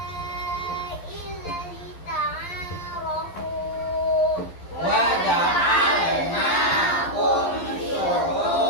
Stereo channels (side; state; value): right; late; 11 ms